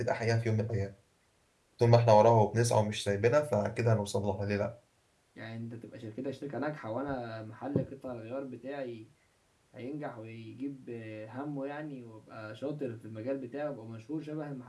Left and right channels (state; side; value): identical; both; correlation 1.00